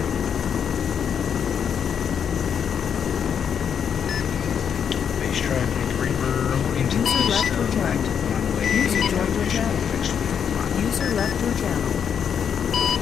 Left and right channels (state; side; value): quieter; right; 7.7 dB